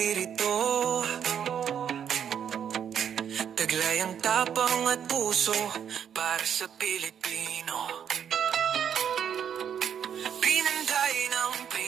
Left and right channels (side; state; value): left; quieter; 8.5 dB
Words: Taglay ang tapang at puso para sa Pilipino. Pinanday ng